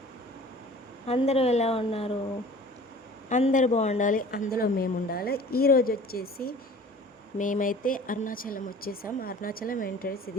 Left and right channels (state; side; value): normal; both; correlation 0.45